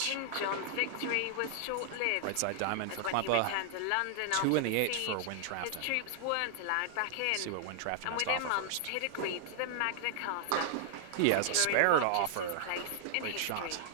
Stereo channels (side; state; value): both; different; correlation 0.00